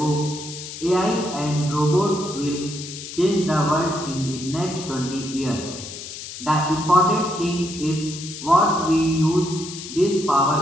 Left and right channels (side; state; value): left; noise; hiss, 11 dB below the sound